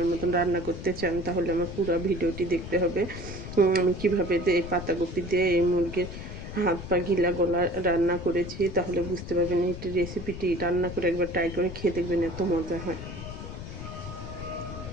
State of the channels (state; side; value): noise; left; rumble, 10 dB below the sound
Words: মতন রান্না করতে চান তাহলে আমার পুরো ভিডিওটি দেখতে হবে। আমি কীভাবে এই পাতাকপি দিয়ে এই মুরগির হাত পা গিলা গলা রান্না করেছি তাহলে বুঝতে পারবেন এই রেসিপিটি রান্না করে একবার ট্রাই করে খেয়ে দেখবেন, এত মজা হয়।